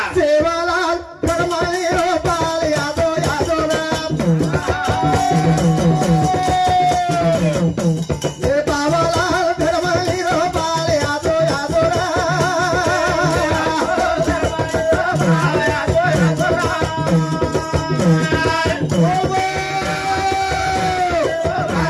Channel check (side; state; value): both; identical; correlation 1.00